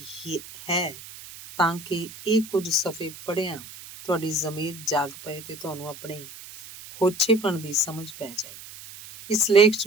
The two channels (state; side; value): noise; right; hiss, 16 dB below the sound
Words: ਹੀ ਹੈ ਤਾਂ ਕਿ ਇਹ ਕੁਝ ਸਫ਼ੇ ਪੜ੍ਹਿਆਂ ਤੁਹਾਡੀ ਜ਼ਮੀਰ ਜਾਗ ਪਏ ਤੇ ਤੁਹਾਨੂੰ ਆਪਣੇ ਹੋਛੇਪਣ ਦੀ ਸਮਝ ਪੈ ਜਾਏ। ਇਸ ਲੇਖ 'ਚ